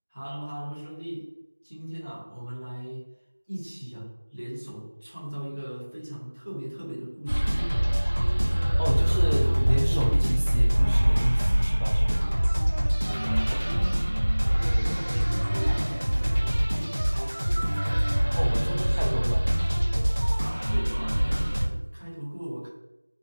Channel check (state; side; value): inverted; both; correlation -1.00